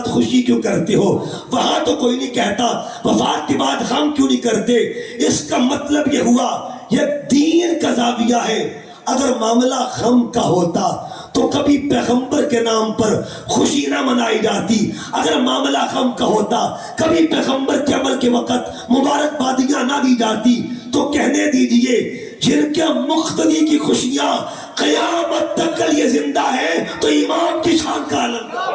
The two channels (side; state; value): both; identical; correlation 1.00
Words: خوشی کیوں کرتے ہو. وہاں تو کوئی نہیں کہتا وفات کے بعد غم کیوں نہیں کرتے. اس کا مطلب یہ ہوا یہ دین کا زاویہ ہے. اگر معاملہ غم کا ہوتا تو کبھی پیغمبر کے نام پر خوشی نہ منائی جاتی. اگر معاملہ غم کا ہوتا کبھی پیغمبر کے عمل کے وقت مبارکبادیاں نہ دی جاتی. تو کہنے دیجئے جن کے مقتدی کی خوشیاں قیامت تک کے لیے زندہ ہے تو امام کی شان کا عالم کا،